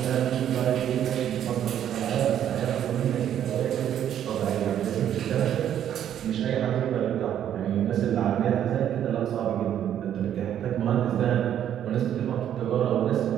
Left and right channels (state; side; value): quieter; left; 10.3 dB